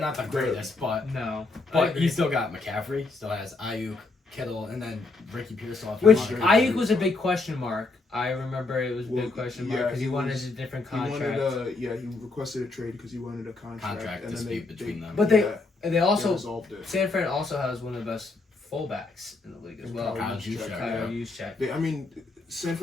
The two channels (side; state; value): right; quieter; 3.6 dB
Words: the greatest, but he still got McCaffrey. Still has Ayuk, Kittle, and then Ricky Pearsall. Which Ayuk was a big question mark. I remember it was a big question mark because he wanted a different contract. He requested a trade because he wanted a contract and dispute between them. But they also resolved it. San Fran also has one of the best fullbacks in the league as well. Kyle Juszczyk. I mean, San